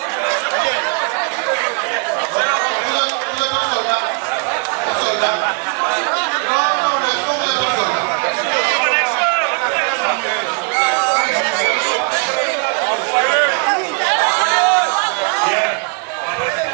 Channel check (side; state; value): left; quieter; 36.9 dB